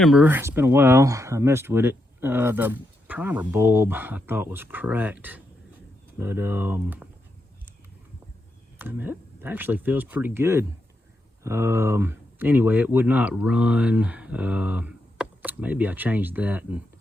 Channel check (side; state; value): both; normal; correlation 0.83